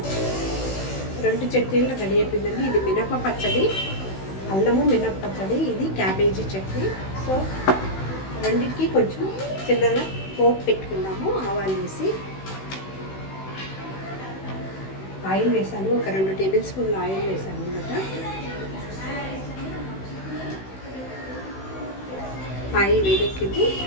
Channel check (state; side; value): late; right; 16 ms